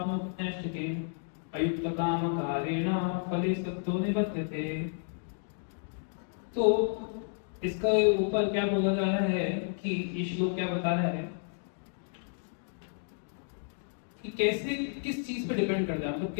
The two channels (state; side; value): silent; right; digital silence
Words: अयुक्त काम कारेण फले सत्तो निबध्यते। तो इसका ऊपर क्या बोला जा रहा है कि ये श्लोक क्या बता रहा है कि कैसे, किस चीज पे डिपेंड करता है, मतलब